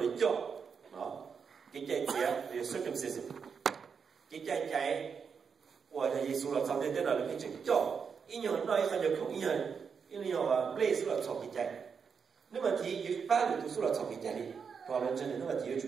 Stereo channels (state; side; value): quieter; left; 6.2 dB